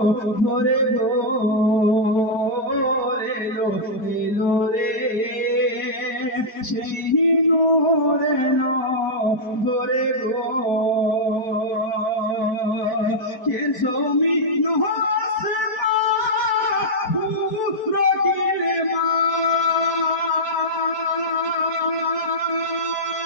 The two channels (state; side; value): late; right; 4.6 ms